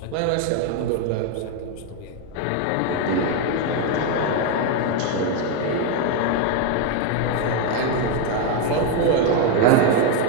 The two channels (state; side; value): different; both; correlation 0.01